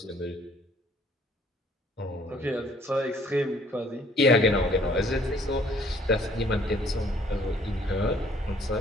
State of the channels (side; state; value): both; normal; correlation 0.60